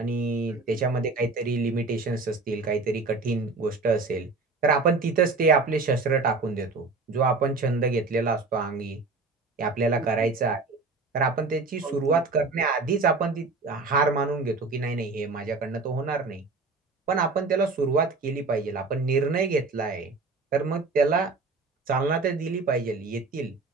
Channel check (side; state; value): left; quieter; 3.9 dB